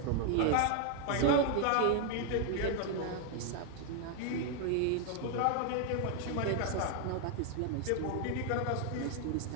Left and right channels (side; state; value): both; different; correlation 0.00